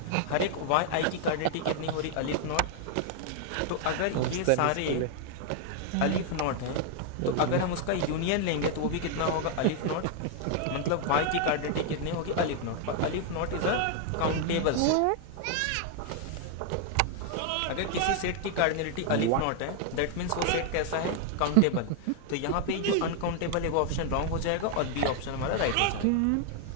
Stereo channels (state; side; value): different; both; correlation 0.00